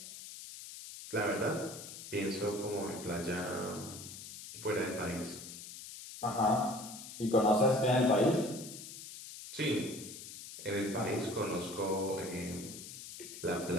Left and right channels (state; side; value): noise; left; hiss, 12 dB below the sound